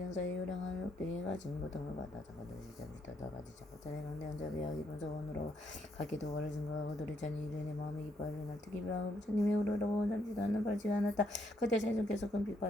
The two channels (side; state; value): both; normal; correlation 0.74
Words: 요량한 욕되게 가진 고통을 받아 자가들이 시작부터 가지 자가자의 강대한 자비와 기쁜 소원으로 각기 도가를 증거하고 도리찬이 이른의 마음이 기뻐하려 날 특히 비하고 부처님의 우러러고 잠시도 않는 발지가 않았다. 그때 세존께서 큰